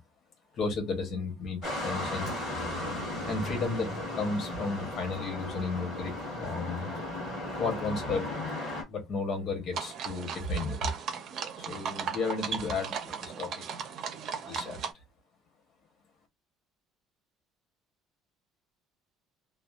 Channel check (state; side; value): normal; both; correlation 0.53